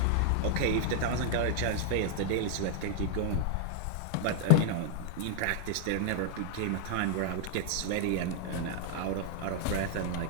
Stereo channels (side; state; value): both; different; correlation -0.01